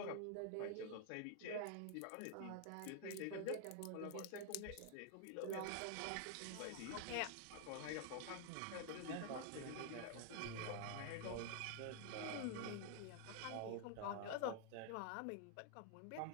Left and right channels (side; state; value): both; different; correlation 0.00